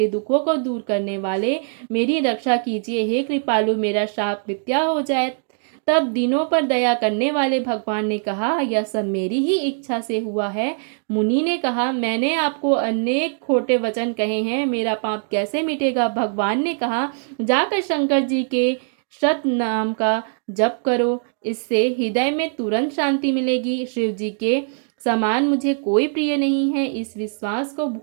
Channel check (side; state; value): left; silent; digital silence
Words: दुखों को दूर करने वाले, मेरी रक्षा कीजिए। हे कृपालु, मेरा शाप मिथ्या हो जाए। तब दिनों पर दया करने वाले भगवान ने कहा, यह सब मेरी ही इच्छा से हुआ है। मुनि ने कहा, मैंने आपको अनेक खोटे वचन कहे हैं, मेरा पाप कैसे मिटेगा। भगवान ने कहा, जाकर शंकर जी के सत नाम का जप करो, इससे हृदय में तुरंत शांति मिलेगी। शिव जी के समान मुझे कोई प्रिय नहीं है, इस विश्वास को